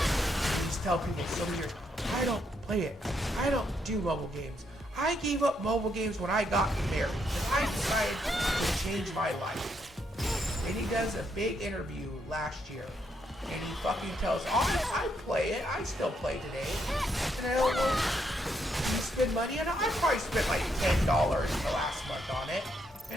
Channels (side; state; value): both; normal; correlation 0.76